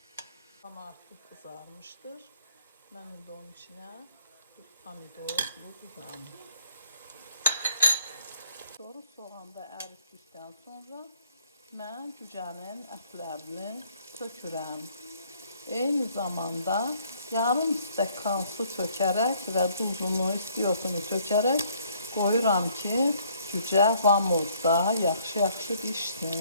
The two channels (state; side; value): inverted; both; correlation -0.63